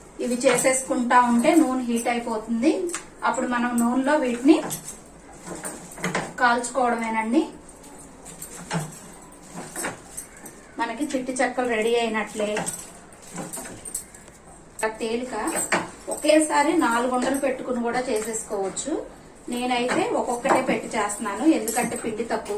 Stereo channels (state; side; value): identical; both; correlation 1.00